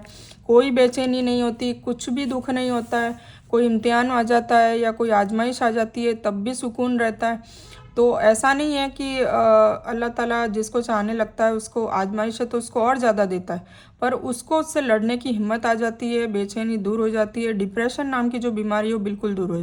कोई बेचैनी नहीं होती, कुछ भी दुख नहीं होता है। कोई इम्तिहान आ जाता है या कोई आजमाइश आ जाती है तब भी सुकून रहता है। तो ऐसा नहीं है कि अल्लाह ताला जिसको चाहने लगता है उसको आजमाइश है तो उसको और ज़्यादा देता है, पर उसको उससे लड़ने की हिम्मत आ जाती है, बेचैनी दूर हो जाती है, डिप्रेशन नाम की जो बीमारी हो बिल्कुल दूर हो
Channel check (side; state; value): both; identical; correlation 1.00